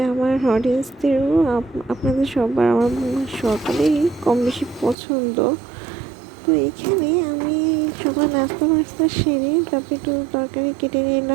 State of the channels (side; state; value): left; drops out; at 5.0 s